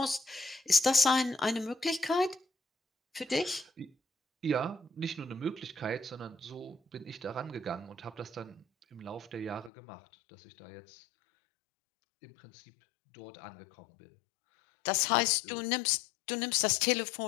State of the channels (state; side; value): drops out; right; at 9.7 s